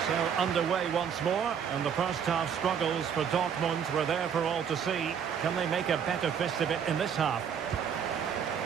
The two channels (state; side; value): quieter; left; 7.7 dB